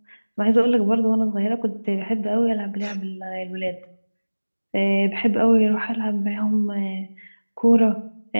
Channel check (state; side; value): inverted; both; correlation -1.00